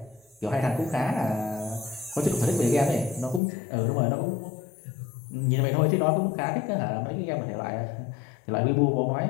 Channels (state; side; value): drops out; right; at 3.4 s